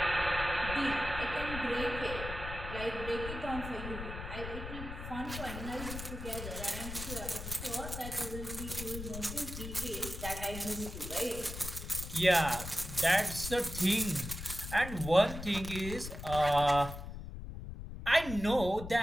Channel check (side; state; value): left; noise; rumble, 8 dB below the sound